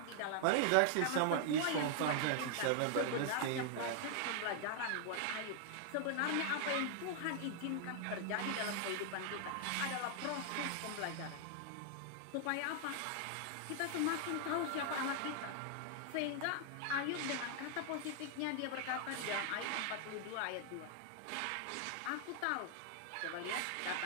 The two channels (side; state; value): both; different; correlation 0.00